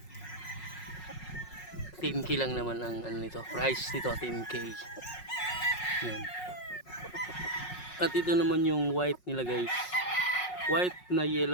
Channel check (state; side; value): late; right; 5.5 ms